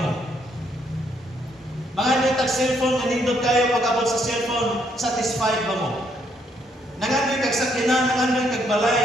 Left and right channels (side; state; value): both; normal; correlation 0.72